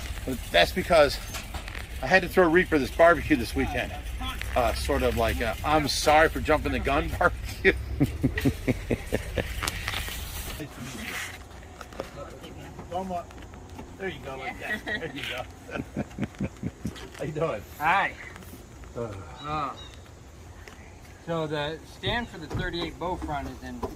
That's because I had to throw Reaper this barbecue this weekend. Sort of like I'm sorry for jumping the gun barbecue. There you go, like that. There you go. How you doing? Hi. So the stand for the 38 bow front is in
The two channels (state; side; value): identical; both; correlation 1.00